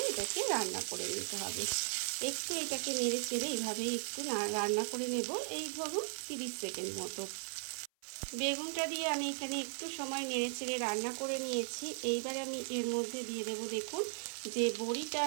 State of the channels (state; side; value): silent; left; 53 dB below the other